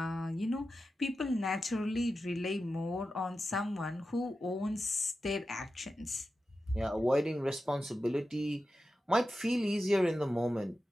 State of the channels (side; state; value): both; normal; correlation 0.92